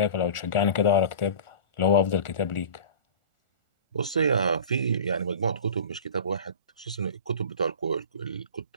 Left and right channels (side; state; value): both; inverted; correlation -0.37